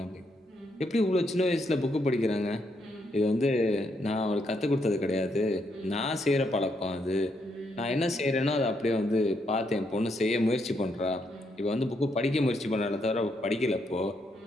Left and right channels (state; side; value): normal; both; correlation 0.77